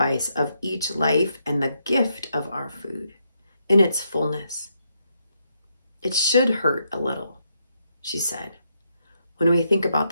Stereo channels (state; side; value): inverted; both; correlation -0.79